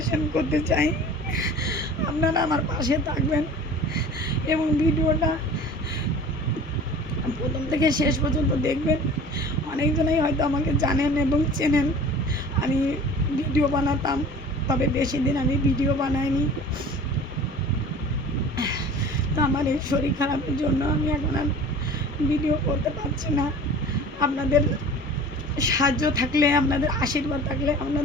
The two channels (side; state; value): both; normal; correlation 0.42